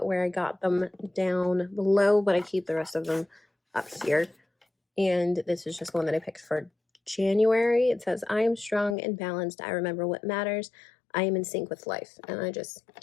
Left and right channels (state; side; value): drops out; right; at 9.0 s